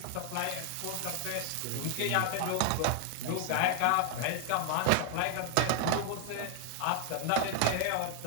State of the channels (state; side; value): different; both; correlation 0.00